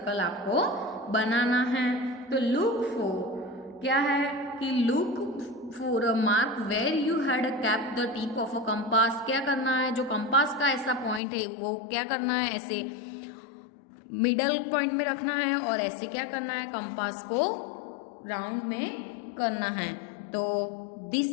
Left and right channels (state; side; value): drops out; right; at 11.2 s